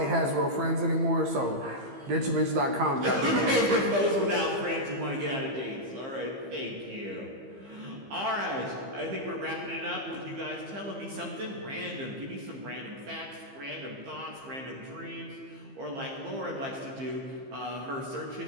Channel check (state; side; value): late; left; 15 ms